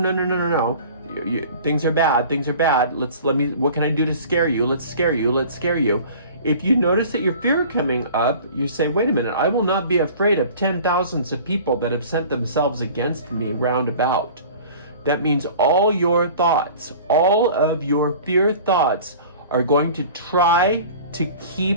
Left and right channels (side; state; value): both; inverted; correlation -0.44